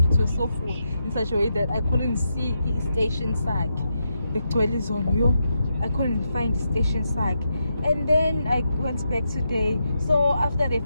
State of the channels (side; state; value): both; inverted; correlation -0.84